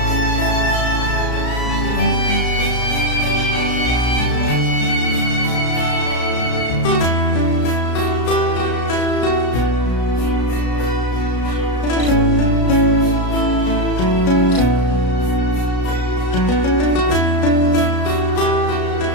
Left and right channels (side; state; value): right; late; 33 ms